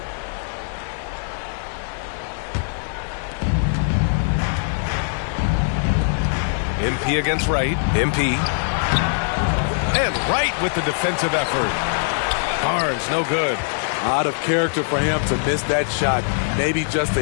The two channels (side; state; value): right; silent; digital silence